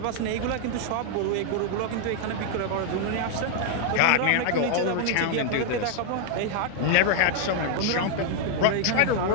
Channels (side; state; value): both; different; correlation 0.00